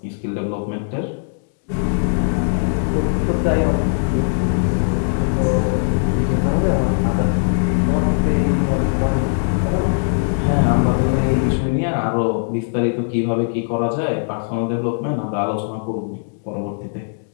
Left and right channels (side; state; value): right; silent; digital silence